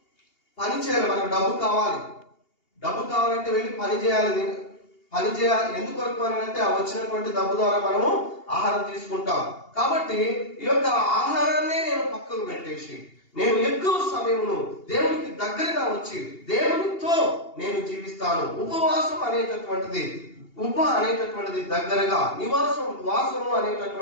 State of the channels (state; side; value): late; right; 2.8 ms